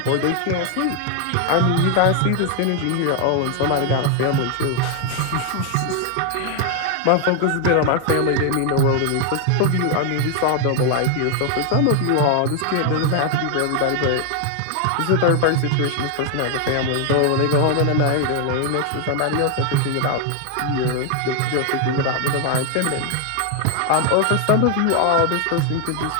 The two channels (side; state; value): both; different; correlation 0.00